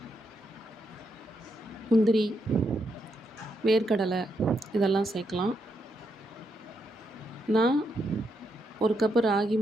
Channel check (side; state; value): both; normal; correlation 0.80